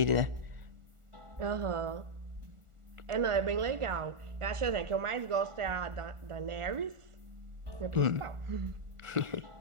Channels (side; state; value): left; late; 1.4 ms